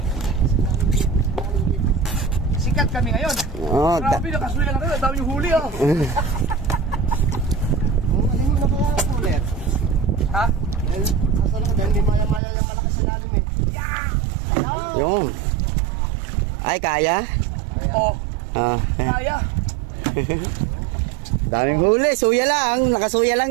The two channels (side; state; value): left; drops out; at 12.4 s